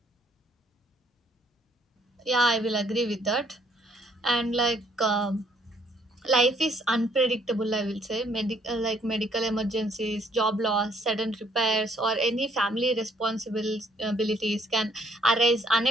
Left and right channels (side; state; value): both; normal; correlation 0.65